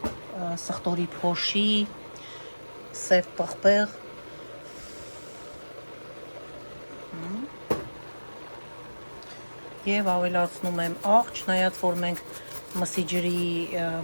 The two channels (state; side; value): inverted; both; correlation -1.00